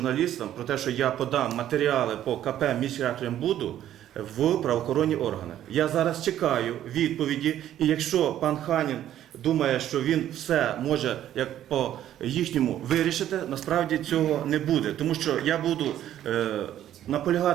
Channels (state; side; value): quieter; left; 11.7 dB